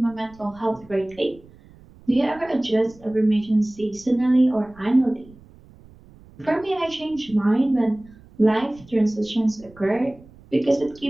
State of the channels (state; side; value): noise; right; rumble, 24 dB below the sound